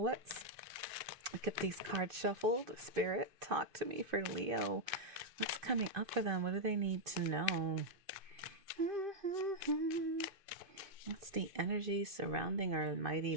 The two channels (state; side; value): late; left; 2.5 ms